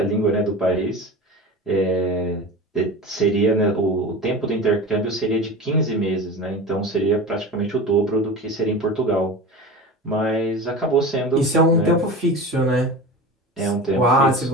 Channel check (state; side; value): normal; both; correlation 0.30